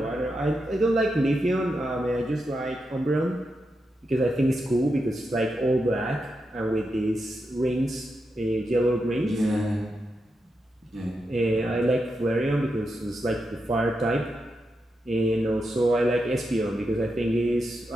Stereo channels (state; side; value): normal; both; correlation 0.86